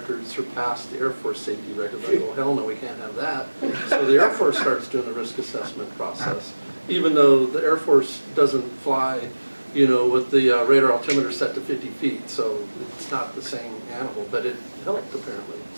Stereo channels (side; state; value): both; inverted; correlation -1.00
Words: surpassed the Air Force safety records. I go, hell no, we can't have that. So the Air Force starts doing the risk assessment process, even though the Air Force doesn't fly, with the radar altimeter set to 50 feet. So it's not the same animal, but it helped apparently